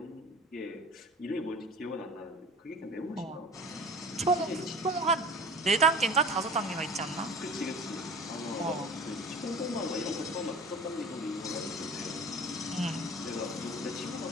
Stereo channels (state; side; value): normal; both; correlation 0.40